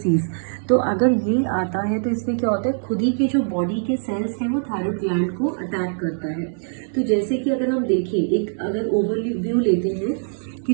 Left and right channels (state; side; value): silent; left; 62 dB below the other